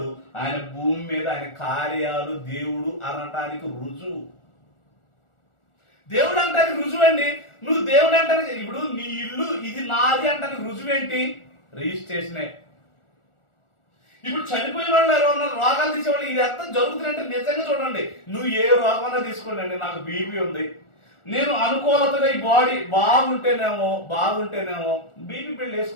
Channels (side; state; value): right; late; 1.4 ms